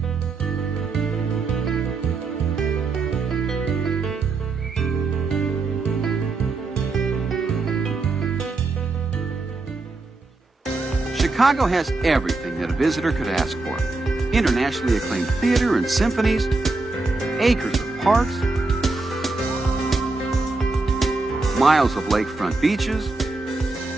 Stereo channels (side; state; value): left; quieter; 3.5 dB